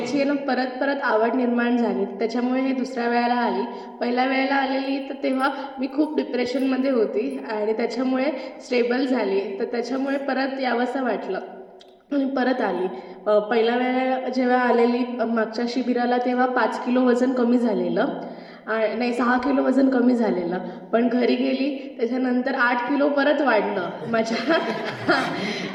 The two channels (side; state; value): both; identical; correlation 1.00